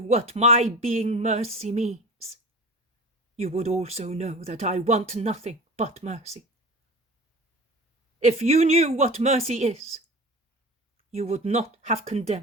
my being mercy means, you would also know that I want nothing but mercy. If you knew what mercy is, you would not have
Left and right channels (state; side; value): normal; both; correlation 0.33